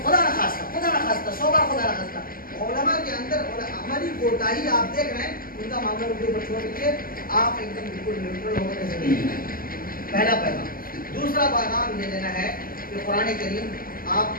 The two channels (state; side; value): late; right; 0.42 ms